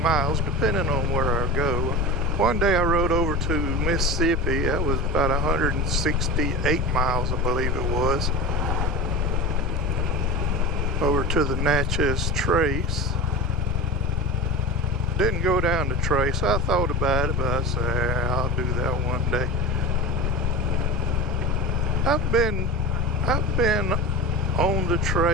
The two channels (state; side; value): normal; both; correlation 0.28